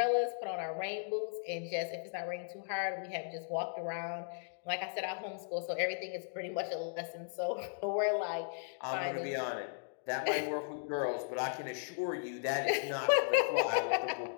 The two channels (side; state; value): right; silent; digital silence